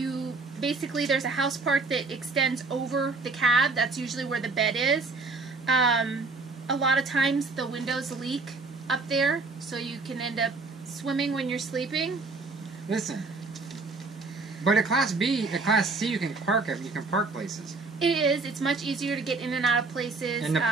Basically there's a house part that extends over the cab. That's usually where the bed is. A lot of times the windows leak up there, so you can end up swimming when you're sleeping. Listen, but a Class C, you can park it. You can park places. It is. It's much easier to get in and out of places. And the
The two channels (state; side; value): quieter; left; 3.8 dB